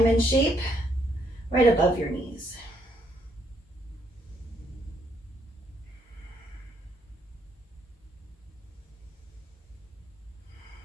shape right above your knees.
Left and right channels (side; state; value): both; normal; correlation 0.72